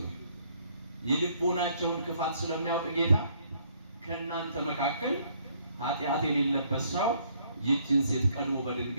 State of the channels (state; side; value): inverted; both; correlation -0.66